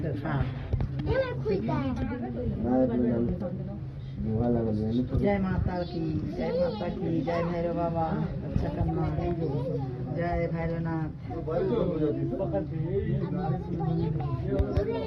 तरफा। जय माता की, जय माता की, जय भैरव बाबा अच्छा करना। जय भैरवनाथ।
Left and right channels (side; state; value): both; identical; correlation 1.00